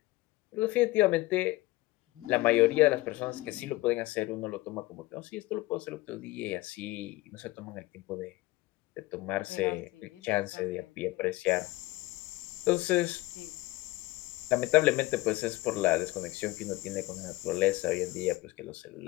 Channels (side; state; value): right; quieter; 19.5 dB